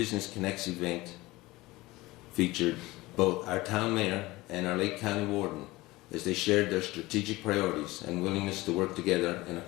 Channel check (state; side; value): quieter; right; 19.9 dB